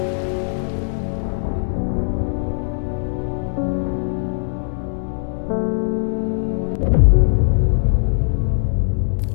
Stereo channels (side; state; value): right; silent; digital silence